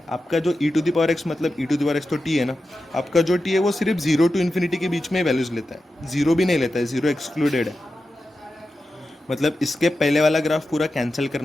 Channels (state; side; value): normal; both; correlation 0.91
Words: आपका जो e to the power x, मतलब e to the power x तो t है ना, आपका जो t है वो सिर्फ 0 टू इन्फिनिटी के बीच में वैल्यूज लेता है, 0 भी नहीं लेता है, 0 एक्सक्लूडेड है। मतलब इसके पहले वाला ग्राफ पूरा कैंसिल